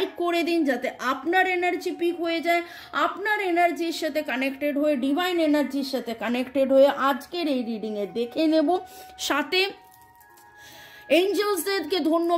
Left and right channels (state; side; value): identical; both; correlation 1.00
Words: করে দিন যাতে আপনার এনার্জি পিক হয়ে যায়, আপনার এনার্জির সাথে কানেক্টেড হয়ে, ডিভাইন এনার্জির সাথে কানেক্টেড হয়ে আজকের এই রিডিংয়ে দেখে নেব। সাথে এঞ্জেলসদেরকে